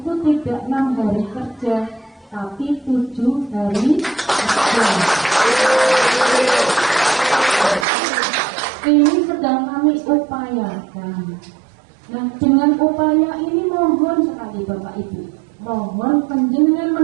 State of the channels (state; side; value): drops out; left; at 7.9 s